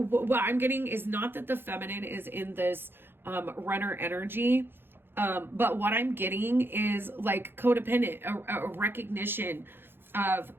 I'm getting is not that the feminine is in this runner energy, but what I'm getting is like codependent, a recognition of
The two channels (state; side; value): late; left; 0.10 ms